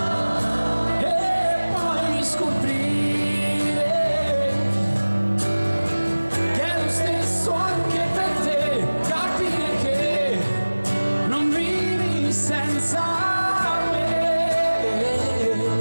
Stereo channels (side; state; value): both; inverted; correlation -1.00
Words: e poi scoprire che è lo stesso anche per te, capire che non vivi senza me.